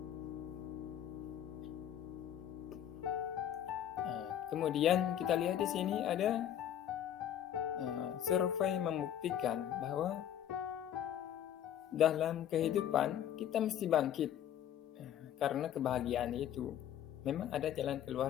Kemudian kita lihat di sini ada survei membuktikan bahwa dalam kehidupan kita mesti bangkit, karena kebahagiaan itu memang ada jalan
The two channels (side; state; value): right; quieter; 10.5 dB